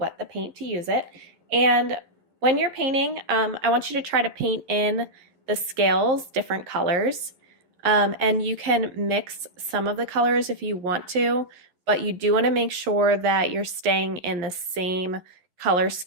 the paint to use it. And when you're painting, I want you to try to paint in the scales different colors. And you can mix some of the colors if you want to, but you do want to make sure that you're staying in the same color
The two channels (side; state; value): left; late; 11 ms